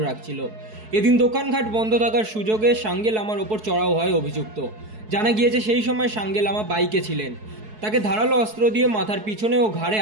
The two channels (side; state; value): left; late; 4.7 ms